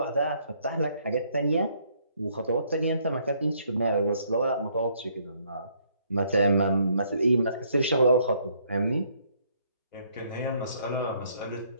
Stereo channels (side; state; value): both; inverted; correlation -0.67